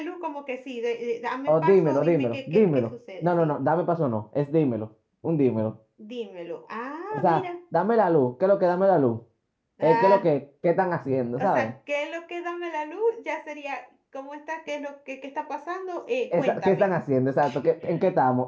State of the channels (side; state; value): both; identical; correlation 1.00